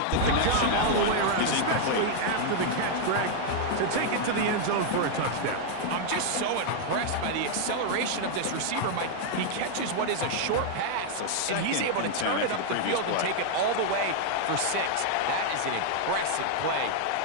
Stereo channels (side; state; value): both; different; correlation 0.00